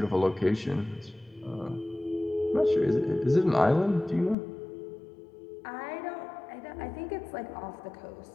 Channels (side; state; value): right; drops out; at 4.4 s